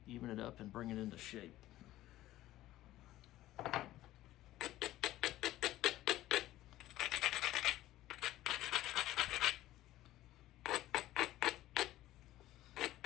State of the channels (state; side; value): quieter; right; 15.2 dB